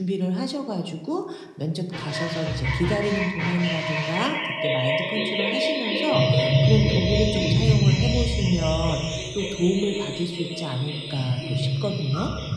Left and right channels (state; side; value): identical; both; correlation 1.00